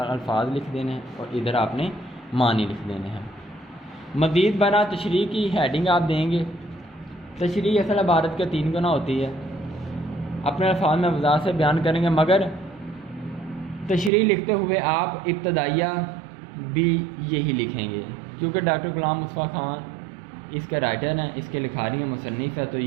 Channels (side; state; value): left; drops out; at 14.1 s